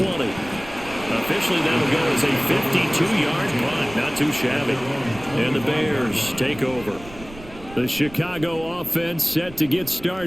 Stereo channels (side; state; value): right; noise; rumble, 17 dB below the sound